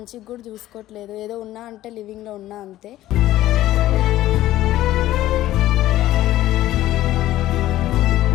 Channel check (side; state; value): right; quieter; 14.6 dB